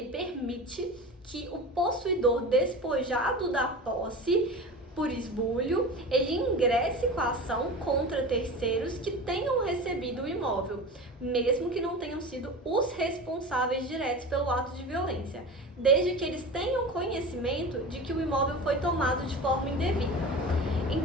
permite que o possuidor despojado da posse por esbulho, ele ingresse com a ação contra terceiros que tenham recebido o imóvel, mesmo que não tenham sido os responsáveis diretos pelo ato de violência, desde que eles tenham conhecimento de que o imóvel foi tomado de forma indevida.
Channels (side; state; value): both; normal; correlation 0.31